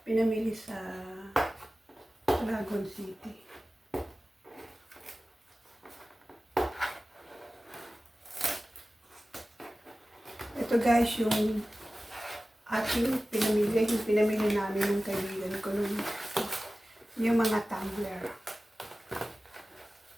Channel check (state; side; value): normal; both; correlation 0.96